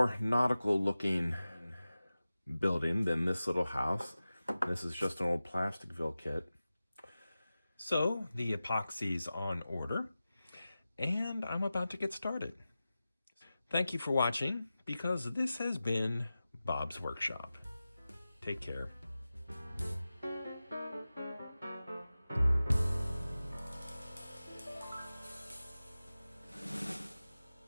nautical looking building than this little house. This is just an old Plasticville kit. So the epoxy's on order, and I'm about to get started. Thank you for watching, because this has been Bob's Workshop. Take care.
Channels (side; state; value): both; inverted; correlation -0.95